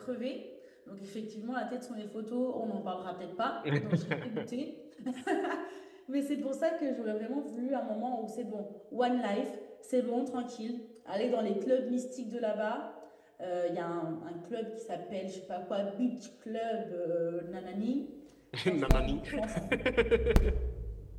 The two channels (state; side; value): identical; both; correlation 1.00